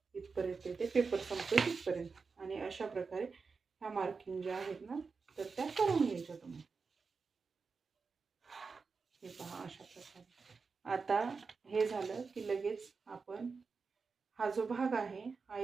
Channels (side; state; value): left; quieter; 4.8 dB